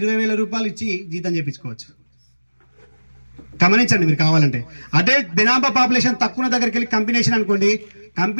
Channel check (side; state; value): both; inverted; correlation -1.00